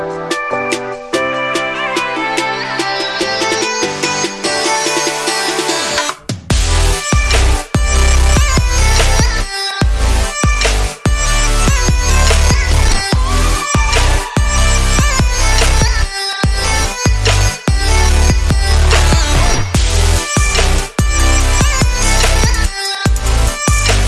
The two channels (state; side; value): identical; both; correlation 1.00